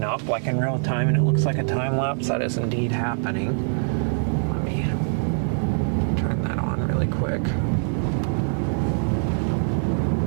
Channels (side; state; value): left; silent; digital silence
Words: up like in real time, and it looks like a time lapse. That is indeed happening. Let me turn that on really quick.